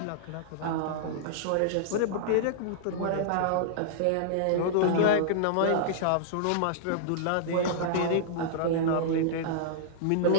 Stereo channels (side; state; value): both; different; correlation -0.02